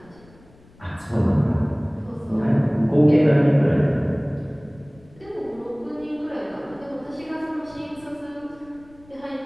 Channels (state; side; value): noise; left; rumble, 26 dB below the sound